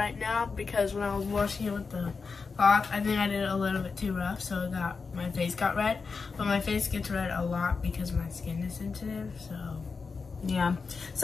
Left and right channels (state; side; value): quieter; right; 4.8 dB